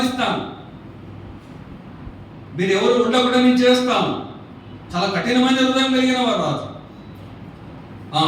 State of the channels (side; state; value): both; identical; correlation 1.00